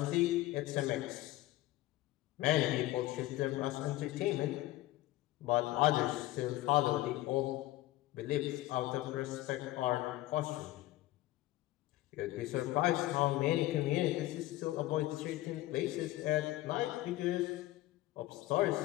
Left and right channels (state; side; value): quieter; right; 16.6 dB